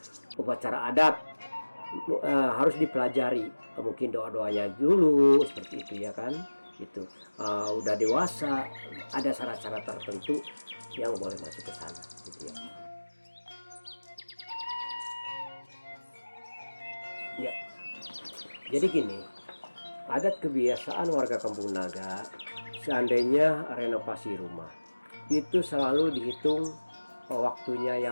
upacara adat, harus dipelajari. Mungkin doa-doanya dulu seperti itu ya kan. Itu udah dewasa, ada syarat-syarat tertentu yang boleh masuk ke sana gitu ya. Ya. Jadi gini, adat kebiasaan warga Kampung Naga, seandainya renovasi rumah itu selalu dihitung waktunya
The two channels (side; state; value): both; inverted; correlation -1.00